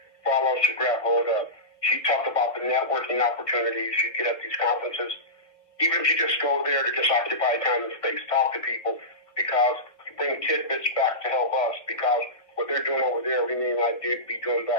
for all of us to grab hold of. She talked about the networking opportunities you get at these conferences. Even if you just go there to just occupy time and space, talk to people, because you bring tidbits back to help us, because what they're doing over there, we may not be doing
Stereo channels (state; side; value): late; right; 1.9 ms